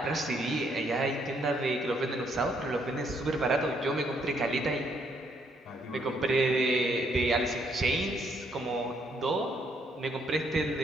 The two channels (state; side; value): normal; both; correlation 0.71